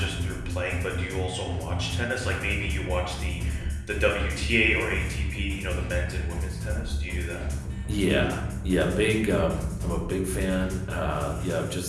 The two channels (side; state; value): both; identical; correlation 1.00